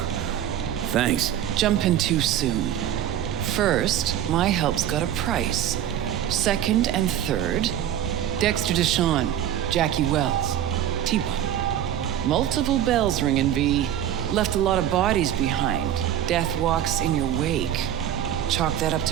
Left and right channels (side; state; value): left; quieter; 10.8 dB